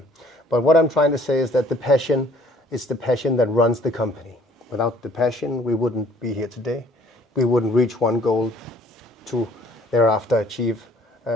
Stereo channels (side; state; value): both; normal; correlation 0.58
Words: But what I'm trying to say is that the passion is the passion that runs the company. Without the passion, we wouldn't be here today. We wouldn't reach one goal to thereafter achieve